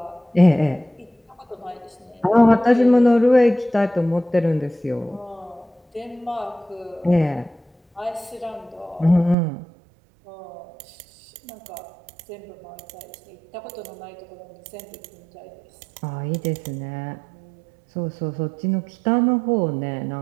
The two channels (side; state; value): left; drops out; at 9.3 s